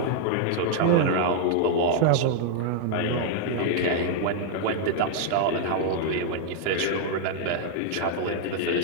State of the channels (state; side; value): different; both; correlation 0.00